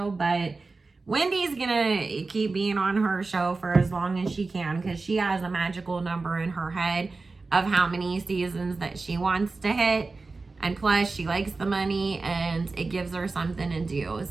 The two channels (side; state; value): left; quieter; 3.8 dB